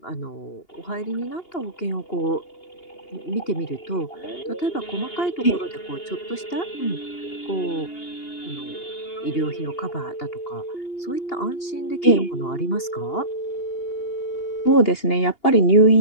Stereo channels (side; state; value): right; late; 2.8 ms